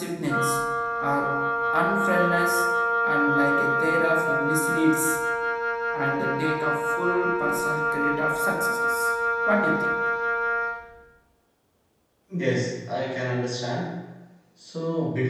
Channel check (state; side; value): identical; both; correlation 1.00